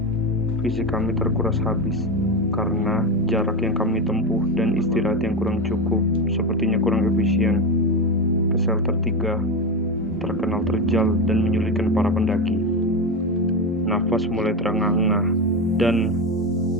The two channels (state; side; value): normal; both; correlation 0.16